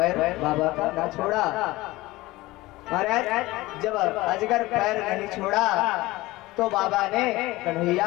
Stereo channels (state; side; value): quieter; right; 19.4 dB